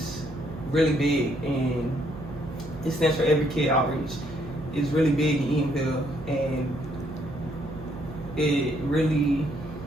really big, and it stands for Every Kid Outreach. It's really big in Eatonville, and it really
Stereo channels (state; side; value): noise; right; hum, 15 dB below the sound